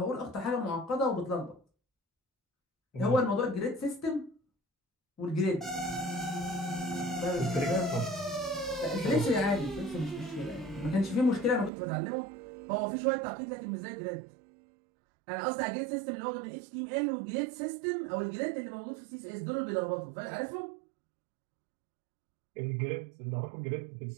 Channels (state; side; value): drops out; left; at 11.7 s